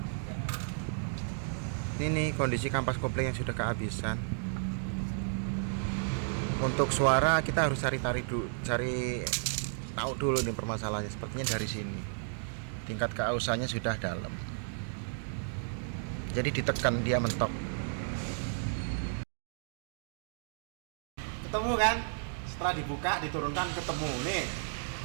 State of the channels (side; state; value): left; silent; digital silence